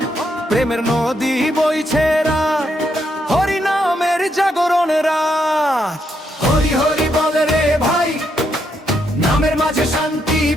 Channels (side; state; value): both; normal; correlation 0.78